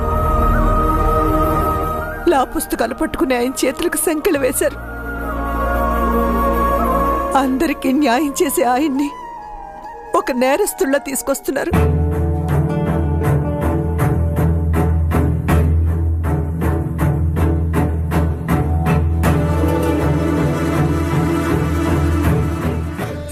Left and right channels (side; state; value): both; identical; correlation 1.00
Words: లా పుస్తకాలు పట్టుకుని ఆయన చేతులకు సంకెళ్ళు వేశారు. అందరికీ న్యాయం చేసే ఆయన్ని ఒక నేరస్తుల్లా తీసుకొస్తున్నారు.